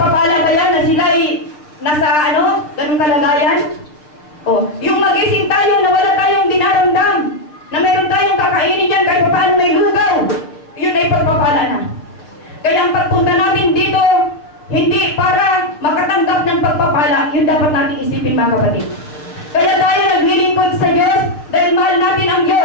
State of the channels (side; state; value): right; late; 6.6 ms